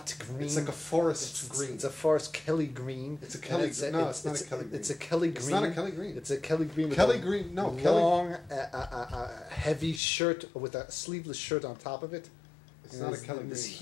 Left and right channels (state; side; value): drops out; right; at 10.0 s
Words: green. It's like a forest green. It's a forest Kelly green. It's a Kelly. No, it's not a Kelly green. It's a Kelly green. It's not a Kelly green. It's a Kelly green. With Kelly a green. No, long, heavy shirt with a sleeveless shirt on top of it. It's not a Kelly in green. this